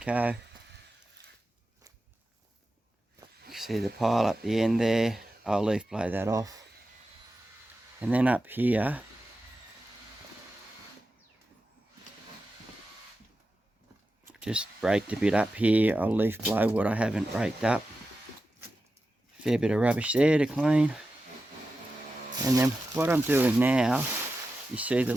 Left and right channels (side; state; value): both; normal; correlation 0.92